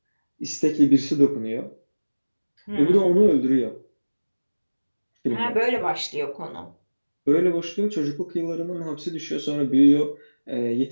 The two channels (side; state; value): both; inverted; correlation -1.00